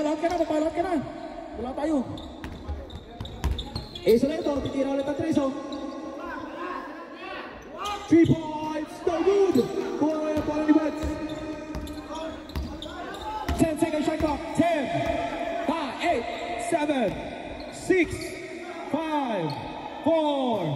ka na. Wala tayo. Ace ulit ito. Titira ulit ang 3, so. 3 points, no good! Kuha na yung pala ni Buds. 10 seconds shot clock. 10, 9, 8, 7, 6, 5, 4.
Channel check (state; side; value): identical; both; correlation 1.00